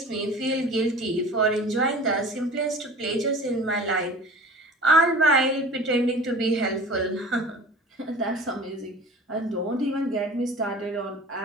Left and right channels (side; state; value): both; normal; correlation 0.41